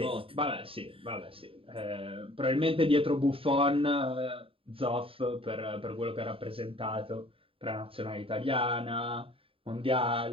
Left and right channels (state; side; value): late; left; 0.27 ms